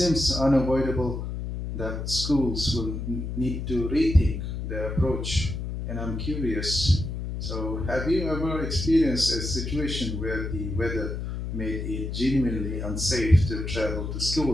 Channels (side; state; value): left; noise; hum, 5 dB below the sound